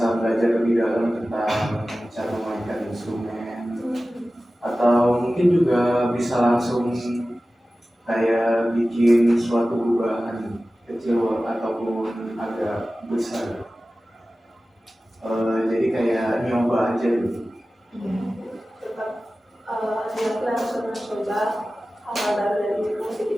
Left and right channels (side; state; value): both; normal; correlation 0.96